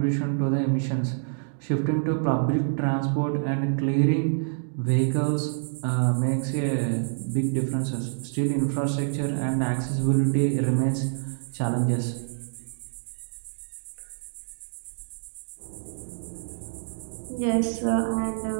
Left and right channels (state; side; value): silent; left; digital silence